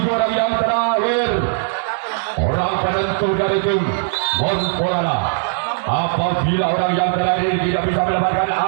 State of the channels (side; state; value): left; silent; digital silence